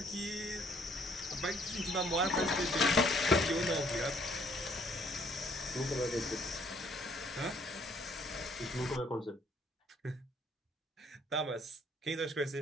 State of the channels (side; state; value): both; normal; correlation 0.63